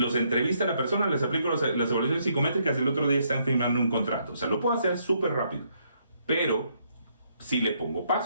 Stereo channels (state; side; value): inverted; both; correlation -0.72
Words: entrevista a la persona, les aplico las evaluaciones psicométricas y el otro día están firmando un contrato. O sea, lo puedo hacer súper rápido, pero si le pongo